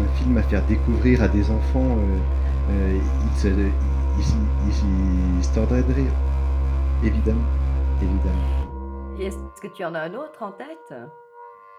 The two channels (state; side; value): identical; both; correlation 1.00